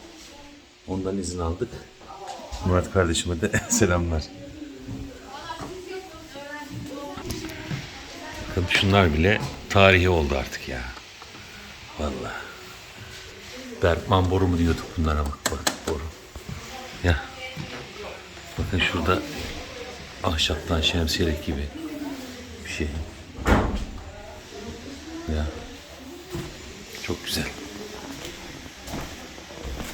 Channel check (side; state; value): both; identical; correlation 1.00